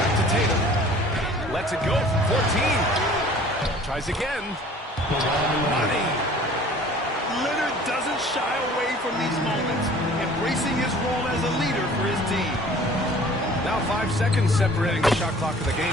to Tatum. Lets it go from 14. Tries again. Money. Leonard doesn't shy away from these moments, embracing his role as a leader for his team. Now 5 seconds separating the shot clock and the game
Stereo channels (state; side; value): normal; both; correlation 0.49